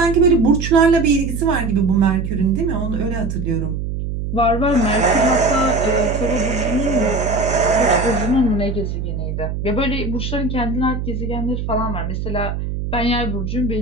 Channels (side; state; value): right; noise; hum, 4 dB below the sound